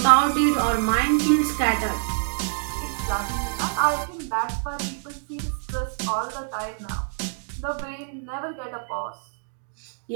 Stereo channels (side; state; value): left; silent; digital silence